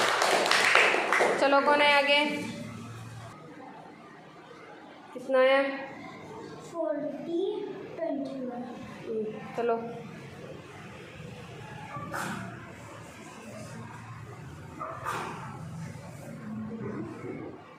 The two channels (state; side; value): identical; both; correlation 1.00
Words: चलो कौन है आगे? कितना है? 40 21। चलो